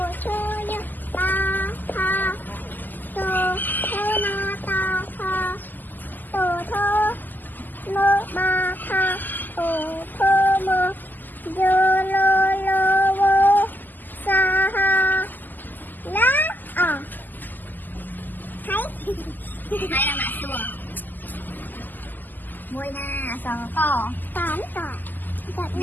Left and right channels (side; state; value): right; late; 0.087 ms